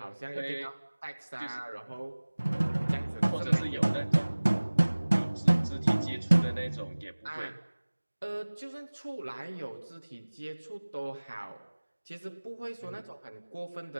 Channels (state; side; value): inverted; both; correlation -1.00